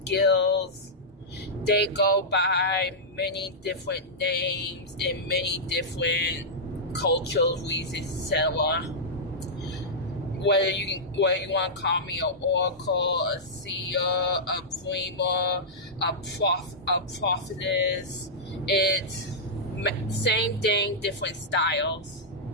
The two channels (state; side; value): normal; both; correlation -0.11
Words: they go by many different names in many different cultures, reasons, etc. Whether you want to call me an oracle, a seer, a dreamer, a prophetess, it's same thing, different styles.